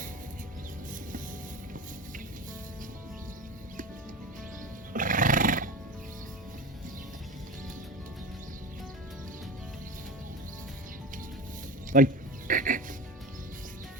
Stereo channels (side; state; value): both; normal; correlation 0.29